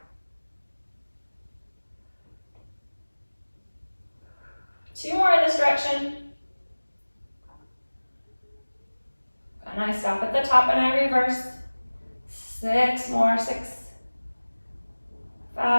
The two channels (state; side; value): inverted; both; correlation -1.00